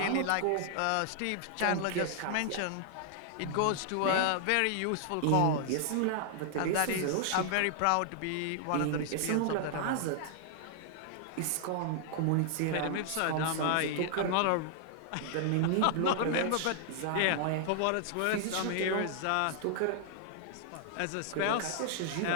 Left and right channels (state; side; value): different; both; correlation -0.01